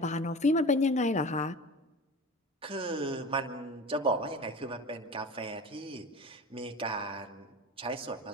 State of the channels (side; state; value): both; normal; correlation 0.34